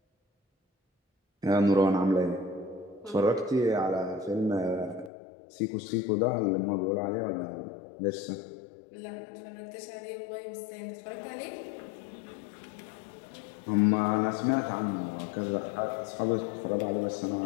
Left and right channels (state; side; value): drops out; right; at 5.1 s